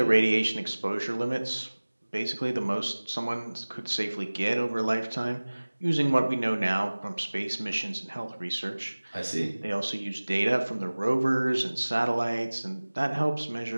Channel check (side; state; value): both; inverted; correlation -1.00